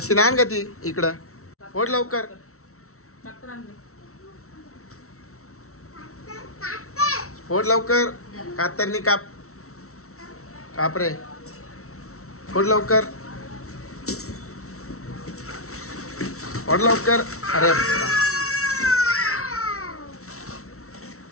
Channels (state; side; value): late; right; 0.63 ms